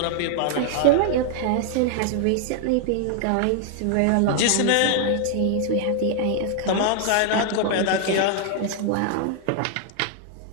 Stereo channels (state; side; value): different; both; correlation 0.00